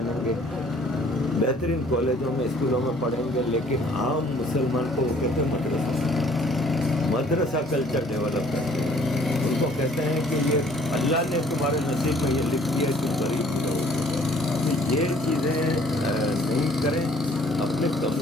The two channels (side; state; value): both; normal; correlation 0.58